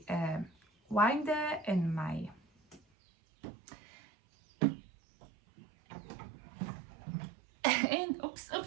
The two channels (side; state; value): left; drops out; at 2.8 s